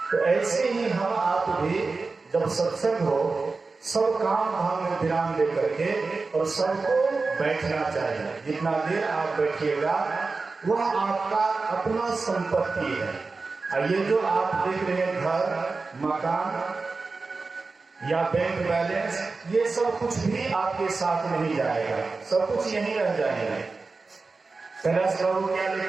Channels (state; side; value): quieter; left; 4.0 dB